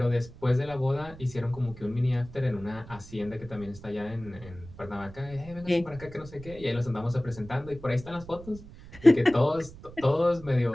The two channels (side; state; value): right; noise; rumble, 17 dB below the sound